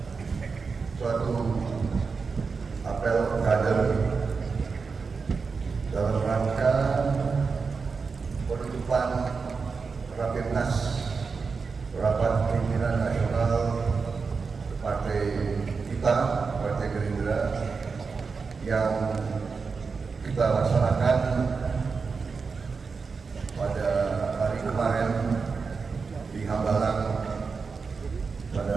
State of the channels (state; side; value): quieter; left; 4.9 dB